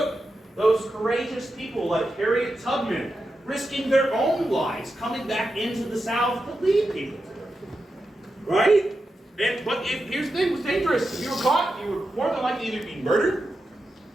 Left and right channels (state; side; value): normal; both; correlation 0.89